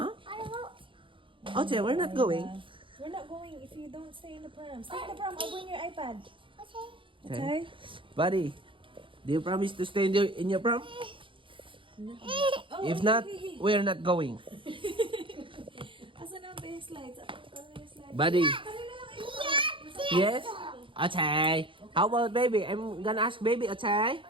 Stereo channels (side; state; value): left; late; 0.25 ms